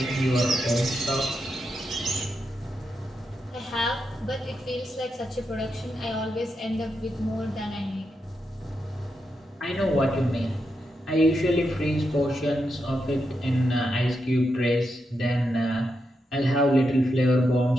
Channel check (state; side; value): normal; both; correlation 0.85